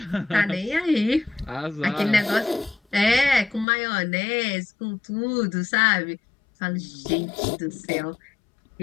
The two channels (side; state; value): right; drops out; at 3.7 s